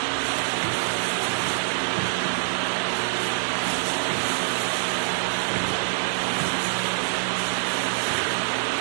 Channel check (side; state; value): left; silent; digital silence